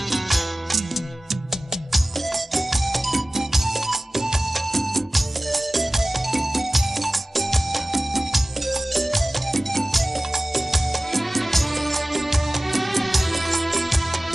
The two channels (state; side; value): normal; both; correlation 0.96